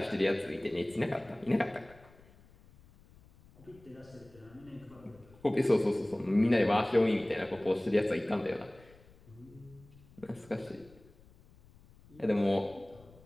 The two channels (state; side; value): noise; left; rumble, 25 dB below the sound